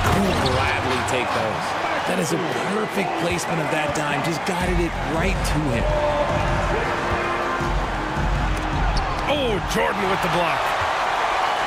will gladly take those. That is a perfect placement of that dime. Just guided it right to him. Oh, Jordan with the block.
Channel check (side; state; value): both; identical; correlation 1.00